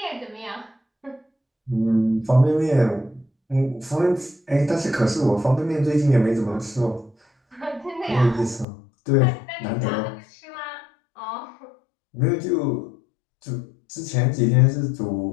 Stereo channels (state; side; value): drops out; right; at 8.7 s